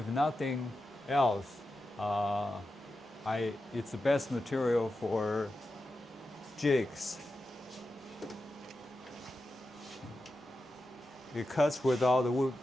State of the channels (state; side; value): normal; both; correlation 0.90